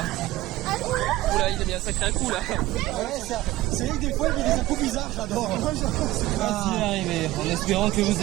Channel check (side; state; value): left; quieter; 17.0 dB